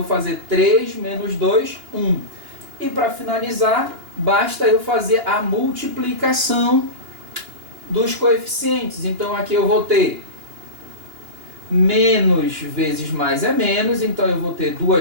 fazer 3 menos 2, 1. E para finalizar, basta eu fazer a multiplicação dos coeficientes. Então aqui eu vou ter menos vezes mais é menos, então eu vou ter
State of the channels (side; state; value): left; late; 2.9 ms